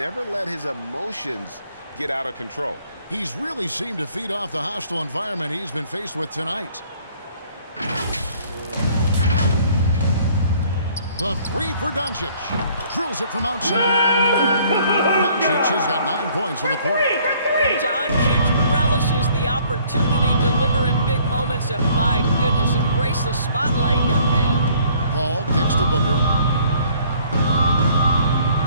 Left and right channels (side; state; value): both; inverted; correlation -0.59